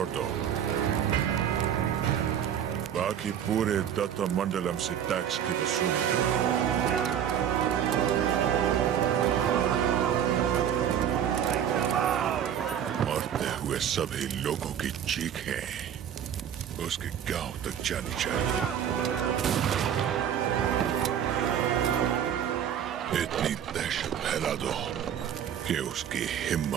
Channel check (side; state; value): left; quieter; 9.2 dB